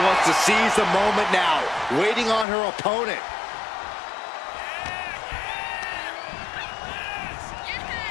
to seize the moment now, waiting on her opponent.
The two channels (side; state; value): right; drops out; at 2.5 s